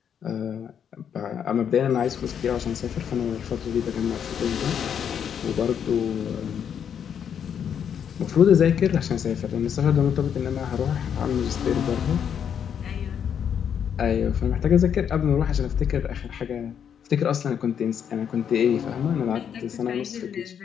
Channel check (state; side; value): quieter; right; 8.2 dB